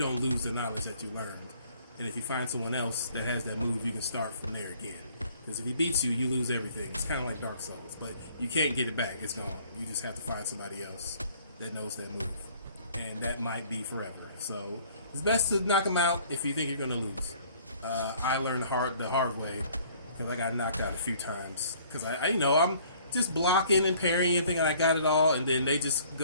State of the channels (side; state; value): both; inverted; correlation -0.56